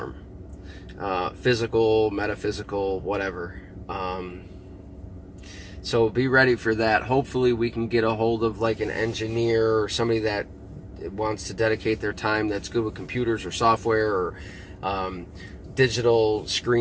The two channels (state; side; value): identical; both; correlation 1.00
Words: Physical, metaphysical, whatever. So be ready for that. Hopefully we can get a hold of like an engineer or somebody that wants to dedicate their time that's good with computers or software or digital